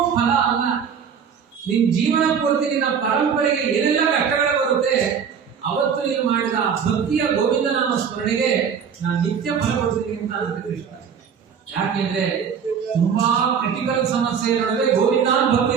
ಫಲ ಅಲ್ಲ. ನಿನ್ ಜೀವನ ಪೂರ್ತಿ ನಿನ್ನ ಪರಂಪರೆಗೆ ಏನೆಲ್ಲ ಕಷ್ಟಗಳು ಬರುತ್ತೆ, ಅವತ್ತು ನೀನು ಮಾಡಿದ ಭಕ್ತಿಯ ಗೋವಿಂದ ನಾಮ ಸ್ಮರಣೆಗೆ ನಾನು ನಿತ್ಯ ಫಲ ಕೊಡ್ತೀನಿ ಅಂತ ಅನ್ನತ್ತೆ ಕೃಷ್ಣ. ಯಾಕೆಂದ್ರೆ ತುಂಬಾ ಕ್ರಿಟಿಕಲ್ ಸಮಸ್ಯೆ ನಡುವೆ ಗೋವಿಂದ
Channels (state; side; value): quieter; left; 7.1 dB